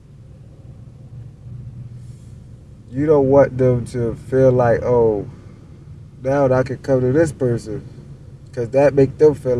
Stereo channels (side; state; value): both; identical; correlation 1.00